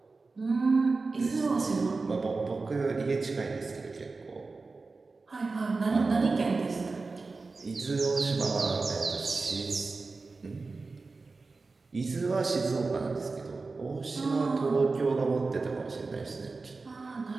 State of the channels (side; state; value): left; quieter; 3.9 dB